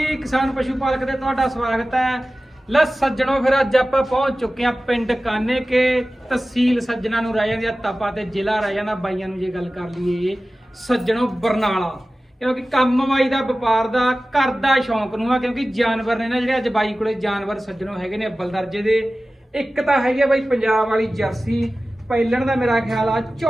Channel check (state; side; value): normal; both; correlation 0.96